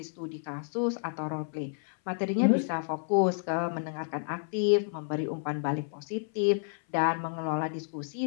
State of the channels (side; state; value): right; silent; 57 dB below the other